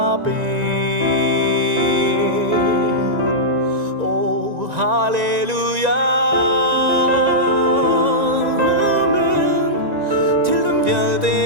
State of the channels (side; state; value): left; late; 1.9 ms